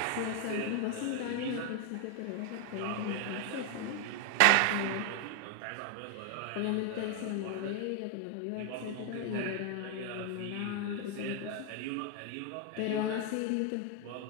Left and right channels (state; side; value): different; both; correlation 0.01